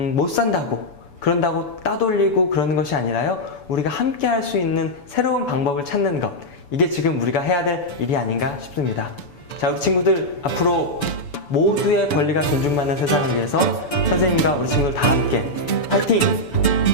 산다고, 그런다고 따돌리고 그러는 것이 아니라요. 우리가 함께 할 수 있는 새로운 방법을 찾는 것. 이게 지금 우리가 해야 될 일이 아닌가 싶습니다. 자, 우리 친구들 앞으로 모두의 권리가 존중받는 세상을 위해서 선생님과 우리 친구들 다 함께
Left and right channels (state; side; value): late; right; 6.9 ms